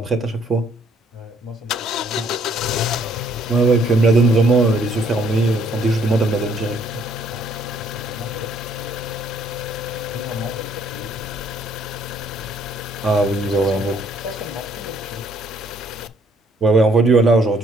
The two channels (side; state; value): both; normal; correlation 0.65